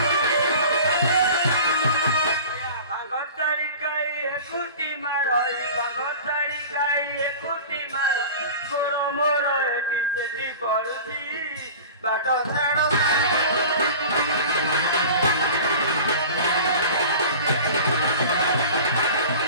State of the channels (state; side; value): inverted; both; correlation -0.38